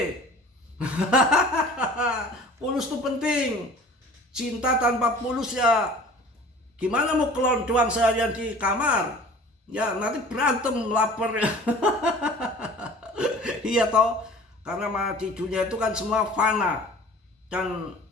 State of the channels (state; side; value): normal; both; correlation 0.45